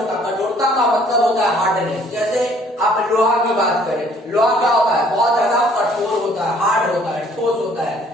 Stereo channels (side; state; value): both; normal; correlation 0.59